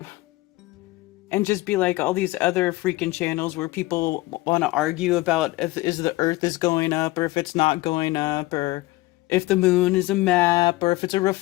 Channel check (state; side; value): quieter; right; 19.9 dB